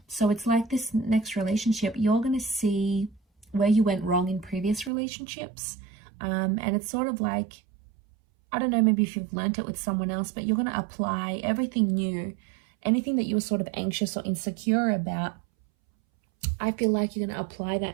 So it's like this next relationship, you're going to see where you went wrong in previous relationships. And it's sort of like, I don't know, maybe if you've learned it with someone else, but you're going to apply everything new. Anything that you were sort of anxious or insecure about, I feel like you're going to apply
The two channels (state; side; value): drops out; left; at 4.9 s